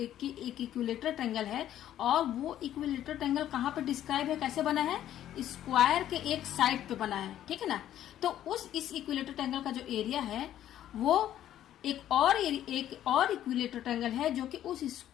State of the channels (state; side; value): quieter; right; 11.8 dB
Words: ट्रायंगल है और वो इक्विलेटरल ट्रायंगल कहाँ पे डिस्क्राइब है, कैसे बना है, स्क्वायर के एक साइड पे बना है। ठीक है ना। तो इस इक्विलेटरल ट्रायंगल का जो एरिया है वो एक और इक्विलेटरल ट्रायंगल है जो कि उस